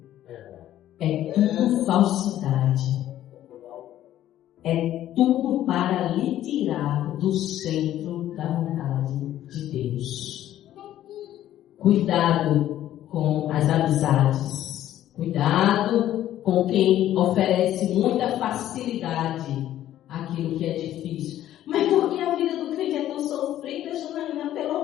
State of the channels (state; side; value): quieter; right; 12.6 dB